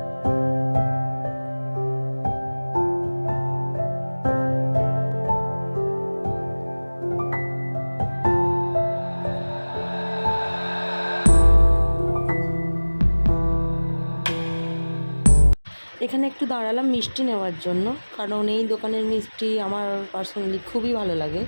এখানে একটু দাঁড়ালাম মিষ্টি নেওয়ার জন্য, কারণ এই দোকানের মিষ্টি আমার পার্সোনালি খুবই ভালো লাগে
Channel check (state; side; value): inverted; both; correlation -1.00